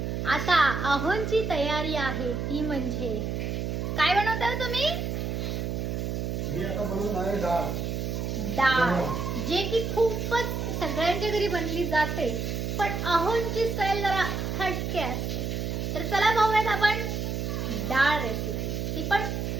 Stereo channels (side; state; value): right; noise; hum, 2 dB below the sound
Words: आता अहोंची तयारी आहे ती म्हणजे काय बनवताय तुम्ही? मी आता बनवून आहे डाळ. डाळ जे की खूपच सगळ्यांच्या घरी बनली जाते पण अहोंची स्टाईल जरा हटके असते. तर चला पाहूयात आपण डाळ रेसिपी. ती पण